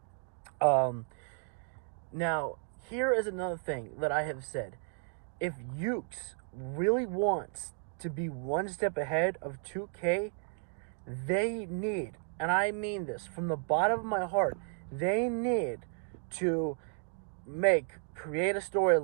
Now, here is another thing that I have said. If Ukes really wants to be one step ahead of 2K, they need, and I mean this from the bottom of my heart, they need to create a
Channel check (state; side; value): silent; left; 55 dB below the other